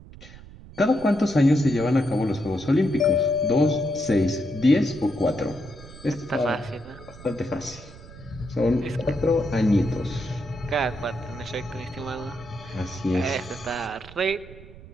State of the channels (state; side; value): noise; right; rumble, 18 dB below the sound